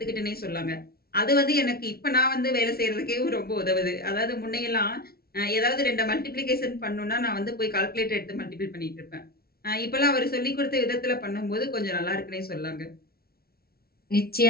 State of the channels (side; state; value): right; late; 0.44 ms